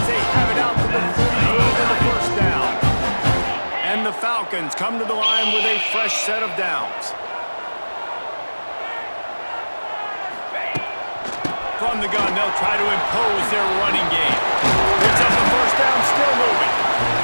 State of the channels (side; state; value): both; inverted; correlation -1.00